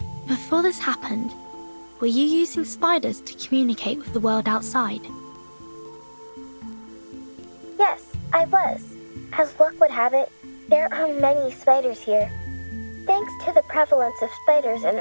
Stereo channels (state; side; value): inverted; both; correlation -1.00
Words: Before this happened, were you using spiders to communicate with the world outside? Yes, I was. As luck would have it, there are many spiders here. Thanks to the prevalence of spiders in